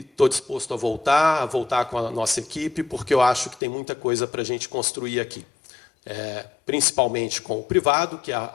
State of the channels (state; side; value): drops out; right; at 3.6 s